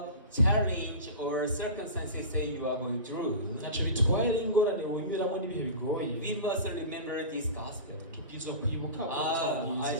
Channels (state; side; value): inverted; both; correlation -0.31